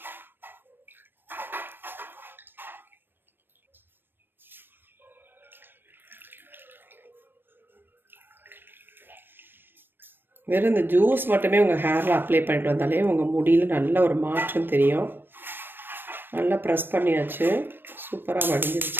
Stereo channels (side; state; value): left; late; 0.096 ms